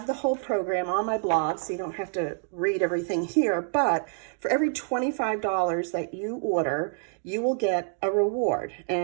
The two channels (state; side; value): silent; left; 60 dB below the other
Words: the whole program on my blog, so you don't have to read everything here. But for every $25 that you order, you will get a reward.